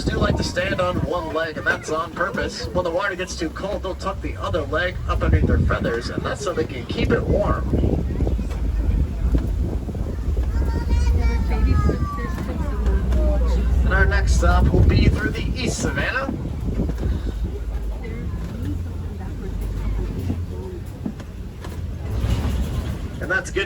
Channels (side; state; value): both; identical; correlation 1.00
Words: do like to stand on one leg, and that's on purpose. When the water gets too cold, they'll tuck the other leg up underneath their feathers, and that's so they can keep it warm. And our next stop will be through the East Savannah. And that's